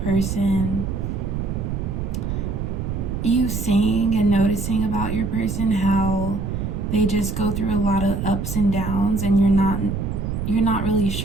you seeing and noticing about your person how they just go through a lot of ups and downs, and you're not really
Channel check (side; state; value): right; noise; rumble, 3 dB below the sound